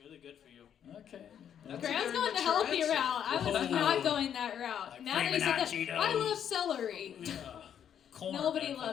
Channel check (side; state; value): right; quieter; 9.0 dB